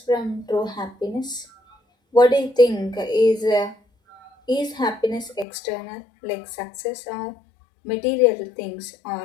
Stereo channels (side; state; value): right; drops out; at 5.5 s